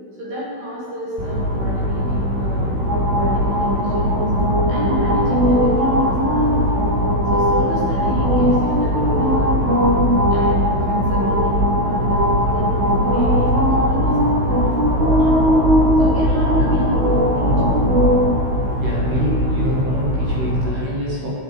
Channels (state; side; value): late; left; 16 ms